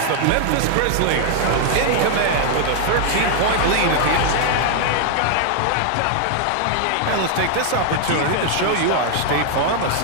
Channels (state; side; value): different; both; correlation 0.00